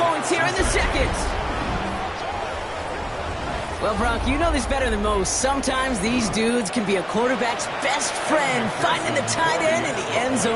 here in the second. Well, Bronk, you know this better than most. Sometimes these dudes can be a quarterback's best friend, finding the tight end in the end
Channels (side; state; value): both; identical; correlation 1.00